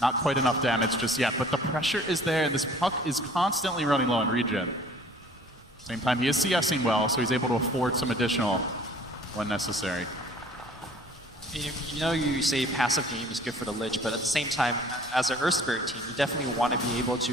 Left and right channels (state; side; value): normal; both; correlation 0.51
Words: Not quite enough damage just yet, but the pressure is there, and this puck is constantly running low on regen. Same time, he is CSing well, so he's able to afford some additional when necessary. You say passive game is good for the Lich, but at the same time, as an Earth Spirit team, you definitely want to be able